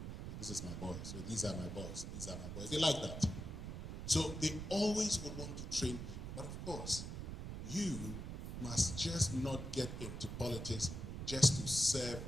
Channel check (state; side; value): noise; right; rumble, 6 dB below the sound